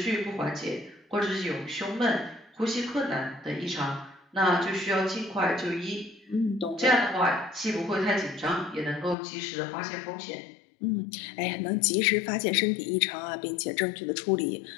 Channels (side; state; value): right; drops out; at 9.2 s